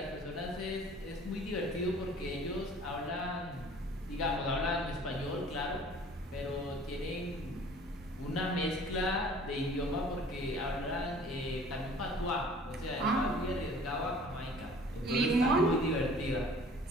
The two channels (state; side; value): normal; both; correlation 0.50